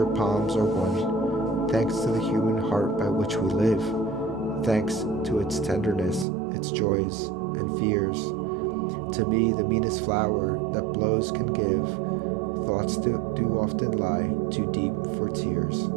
palms are won, thanks to the human heart by which we live, thanks to its tenderness, its joys, and fears. To me the meanest flower that blows can give, thoughts do often lie too deep for tears.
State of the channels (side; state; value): left; drops out; at 6.2 s